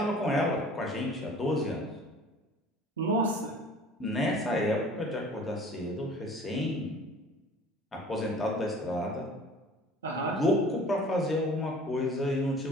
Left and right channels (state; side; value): normal; both; correlation 0.47